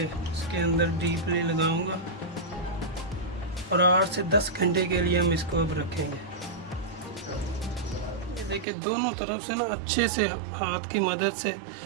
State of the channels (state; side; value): drops out; left; at 8.7 s